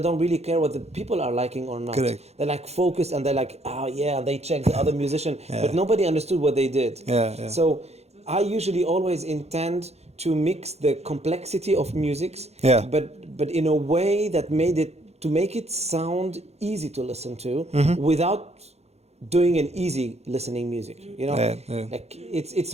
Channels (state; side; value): late; left; 0.31 ms